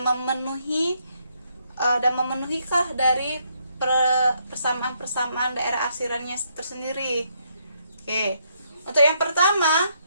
memenuhikah dari persamaan-persamaan daerah arsirannya tersendiri. Oke. Untuk yang pertama,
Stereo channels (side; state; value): both; inverted; correlation -0.74